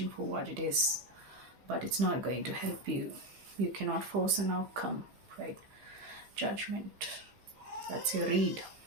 for what it is, but it's not going to help you. You cannot force an outcome, right? Judgment, that's your read.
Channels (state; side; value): late; left; 15 ms